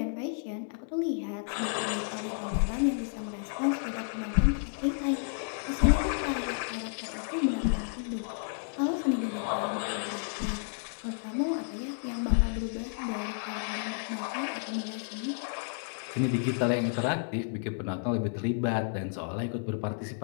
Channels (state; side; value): silent; right; digital silence